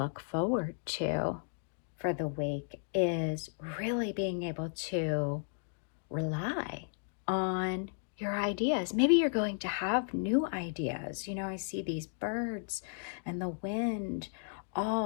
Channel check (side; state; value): right; silent; digital silence